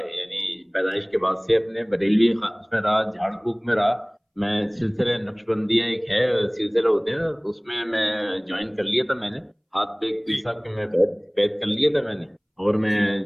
یعنی پیدائش کے بعد سے اپنے بریلوی اس میں رہا, جھاڑ پھونک میں رہا. میں سلسلہ نقش بندیاں ایک ہے سلسلہ ہوتے ہیں نا, اس میں جوائن کر لیا تھا میں نے. ہاتھ پہ ایک پیر جی صاحب کے میں بیعت کر لیا تھا میں نے. اور میں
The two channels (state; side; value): identical; both; correlation 1.00